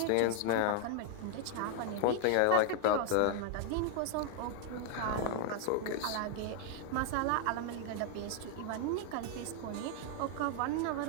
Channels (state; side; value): different; both; correlation 0.00